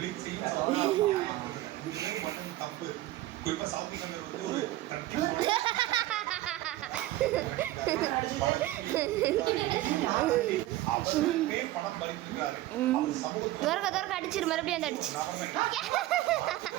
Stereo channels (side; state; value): left; quieter; 16.1 dB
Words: தப்பு. குறிப்பா சவுத் சங்கர் வந்து ஒரு படம் பண்ணிருக்காரு. துவாரகா துவாரகா அடிச்சிரு, மறுபடியும் அந்த அடிச்சு